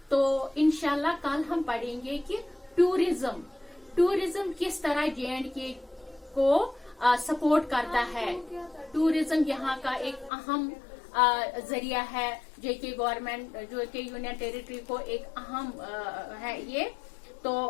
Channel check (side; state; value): right; drops out; at 10.3 s